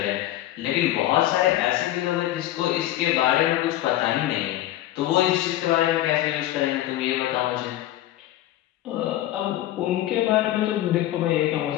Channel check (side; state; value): right; quieter; 14.3 dB